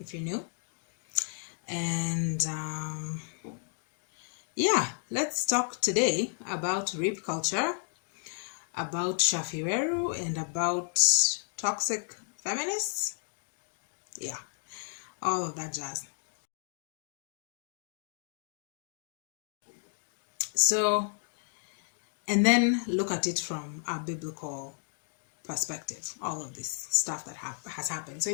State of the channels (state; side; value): silent; right; 56 dB below the other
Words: you're new, and yeah, let's talk today about rape culture, about Shaffie Weru, and about toxic feminists. Yeah, all of that jazz. So, and then look at it from a biblical perspective, all of this stuff that has happened. So